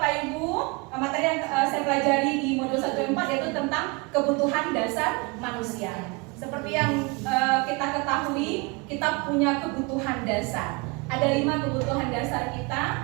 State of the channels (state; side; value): quieter; left; 28.4 dB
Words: Ibu, materi yang saya pelajari di modul 1.4 yaitu tentang kebutuhan dasar manusia. Seperti yang kita ketahui, kita punya kebutuhan dasar. Ada 5 kebutuhan dasar